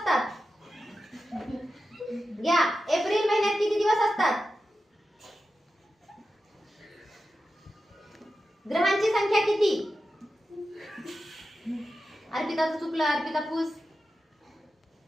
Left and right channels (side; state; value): both; normal; correlation 0.91